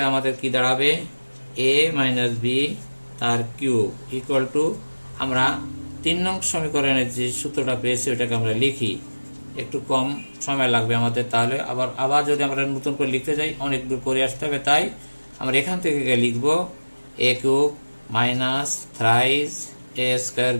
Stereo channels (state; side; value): inverted; both; correlation -1.00